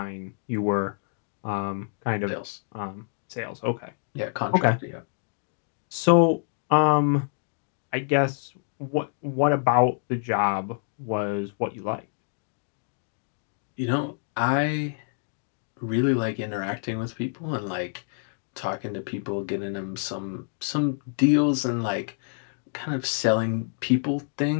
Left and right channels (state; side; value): silent; right; digital silence